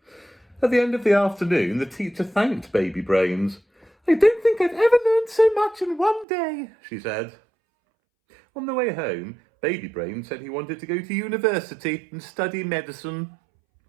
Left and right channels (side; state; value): left; drops out; at 6.2 s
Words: At the end of the afternoon, the teacher thanked Baby Brains. I don't think I've ever learned so much in one day, she said. On the way home, Baby Brains said he wanted to go to university and study medicine.